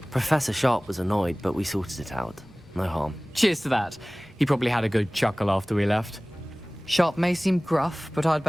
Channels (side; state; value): left; noise; rumble, 29 dB below the sound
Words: Professor Sharp was annoyed, but we sorted it out. No harm. Cheers to that. He probably had a good chuckle after we left. Sharp may seem gruff, but I'd